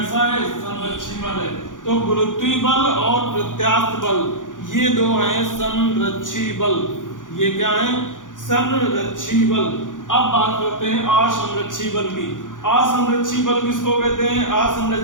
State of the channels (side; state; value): right; late; 0.88 ms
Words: है? संरक्षी बल है। तो गुरुत्वीय बल और प्रत्यास्थ बल ये दो हैं संरक्षी बल। ये क्या है? संरक्षी बल। अब बात करते हैं असंरक्षी बल की। असंरक्षी बल किसको कहते हैं?